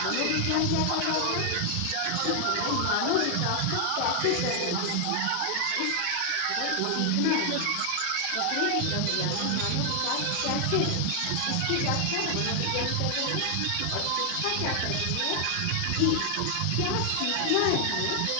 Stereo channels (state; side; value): different; both; correlation 0.00